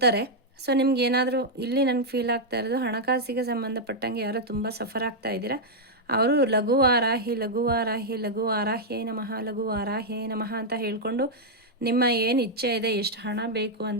ಸೊ ನಿಮ್ಗೆ ಏನಾದರೂ ಇಲ್ಲಿ ನನಗೆ ಫೀಲ್ ಆಗ್ತಾ ಇರೋದು, ಹಣಕಾಸಿಗೆ ಸಂಬಂಧಪಟ್ಟಂಗೆ ಯಾರೋ ತುಂಬ ಸಫರ್ ಆಗ್ತಾ ಇದ್ದೀರಾ, ಅವರು ಲಘುವಾರಾಹ್ಯೈ ನಮಃ ಅಂತ ಹೇಳ್ಕೊಂಡು ನಿಮ್ಮ ಏನು ಇಚ್ಛೆ ಇದೆ, ಎಷ್ಟು ಹಣ ಬೇಕು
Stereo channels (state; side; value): normal; both; correlation -0.03